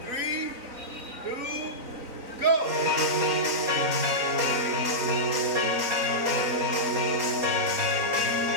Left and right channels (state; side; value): late; left; 3.9 ms